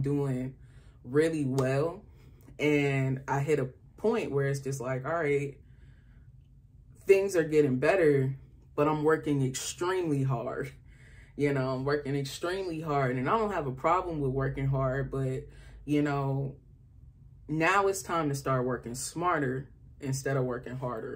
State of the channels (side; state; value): both; identical; correlation 1.00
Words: doing really well. And I hit a point where it's just like, all right, things are getting better, but I'm working extremely hard. You know, I'm working extremely hard, and I don't have a problem with working hard, but you know, now it's time to start working smarter instead of working